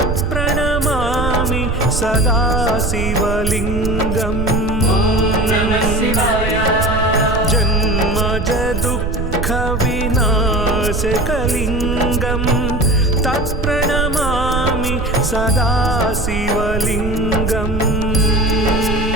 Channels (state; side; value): noise; right; rumble, 3 dB below the sound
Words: सदा शिवलिङ्गम् जन्मज दुःखविनाशकलिङ्गं तत्प्रणमामि सदा शिवलिङ्गम्